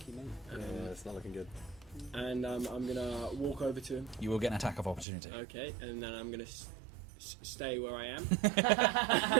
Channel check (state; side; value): drops out; left; at 5.1 s